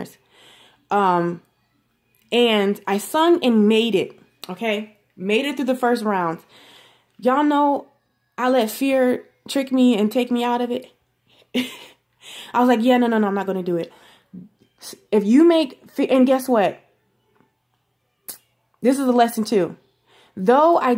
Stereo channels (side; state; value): both; identical; correlation 1.00